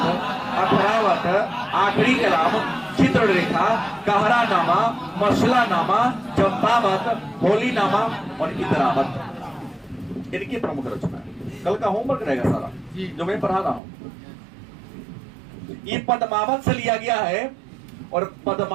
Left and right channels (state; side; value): drops out; left; at 13.8 s